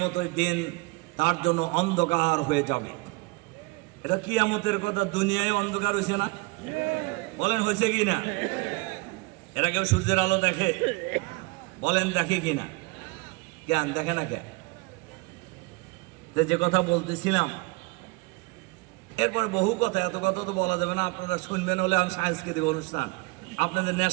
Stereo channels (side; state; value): left; quieter; 26.3 dB